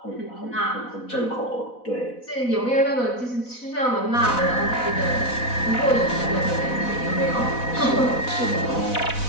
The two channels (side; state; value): right; late; 4.1 ms